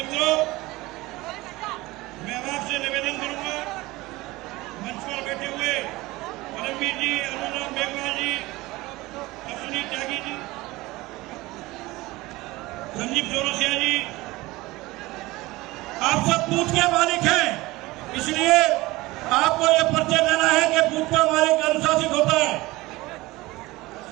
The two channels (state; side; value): quieter; left; 20.1 dB